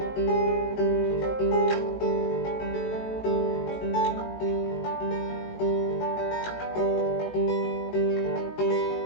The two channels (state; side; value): late; right; 18 ms